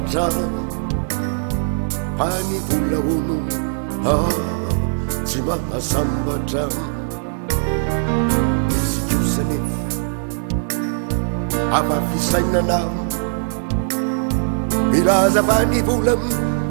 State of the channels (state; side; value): silent; left; digital silence